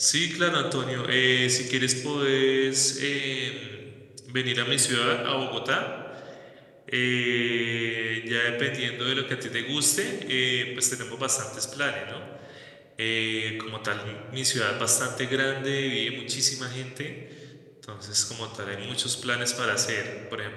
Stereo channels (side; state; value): both; identical; correlation 1.00